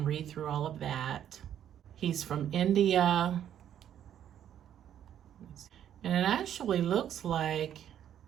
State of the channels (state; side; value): quieter; left; 10.2 dB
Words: read through all of that. He's from India. And it actually looks like